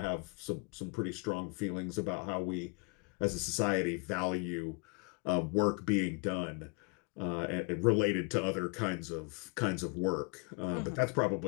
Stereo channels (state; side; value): quieter; right; 33.0 dB